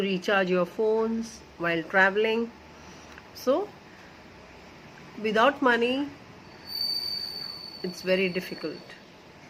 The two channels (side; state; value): both; identical; correlation 1.00